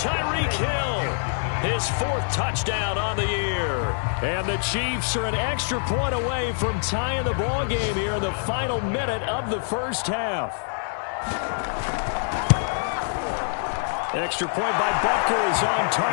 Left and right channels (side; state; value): right; silent; 61 dB below the other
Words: Hill, his 4th touchdown on the year. And the Chiefs are an extra point away from tying the ball game here in the final minute of the first half. Extra point by Butker is on